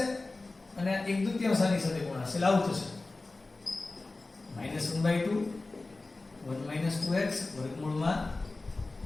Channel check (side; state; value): right; quieter; 3.3 dB